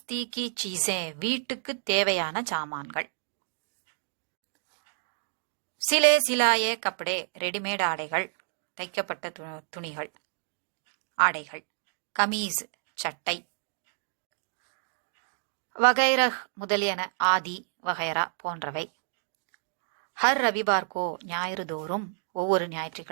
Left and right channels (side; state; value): left; silent; digital silence